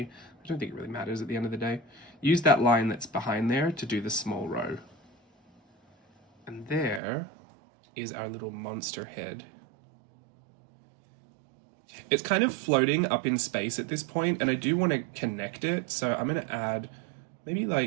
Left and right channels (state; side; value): drops out; left; at 7.0 s